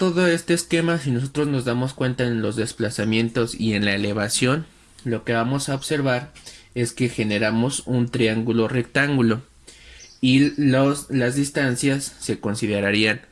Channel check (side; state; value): both; identical; correlation 1.00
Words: este esquema, si nosotros nos damos cuenta en los desplazamientos y en la elevación, lo que vamos a observar es que generamos un triángulo rectángulo y las distancias se considerarían